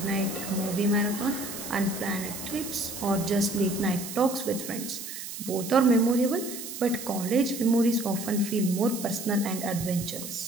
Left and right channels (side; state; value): right; noise; hiss, 9 dB below the sound